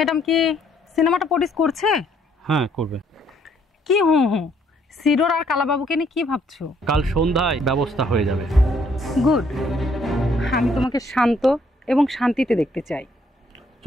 কি সিনেমাটা প্রডিউস করছে? হ্যাঁ করবে। কি হুঁ হুঁ, সিডোর আর কালাবাবুকে নিয়ে কি ভাবছো? কাল সন্ধ্যায় ব্যবস্থা হয়ে যাবে। গুড। আমি তোমাকে শান্ত এবং শান্তিতে দেখতে চাই।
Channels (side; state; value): both; normal; correlation 0.67